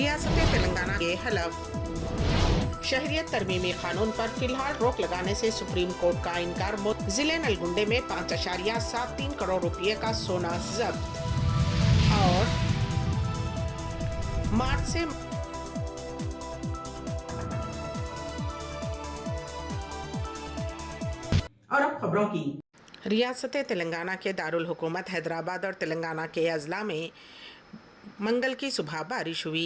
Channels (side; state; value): both; identical; correlation 1.00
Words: तेलंगाना के हलफ। शहरियत तरमीमी कानून पर फिलहाल रोक लगाने से सुप्रीम कोर्ट का इनकार। जिले नलगुंडे में 5.73 करोड़ रुपए का सोना जब्त। और मार्च से और अब खबरों की। रियासत तेलंगाना के दारुल हुकूमत हैदराबाद और तेलंगाना के अजला में मंगल की सुबह बारिश